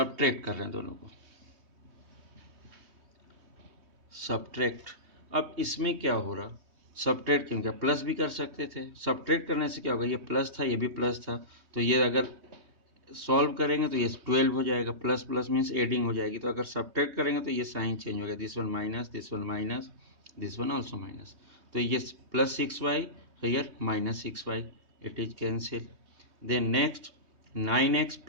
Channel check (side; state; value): left; late; 3.2 ms